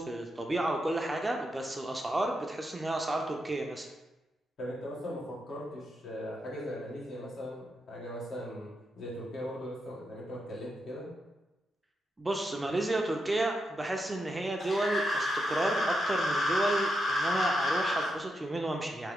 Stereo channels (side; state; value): both; normal; correlation 0.84